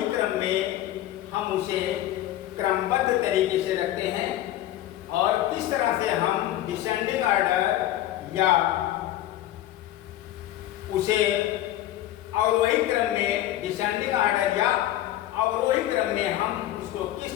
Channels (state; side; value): quieter; right; 13.7 dB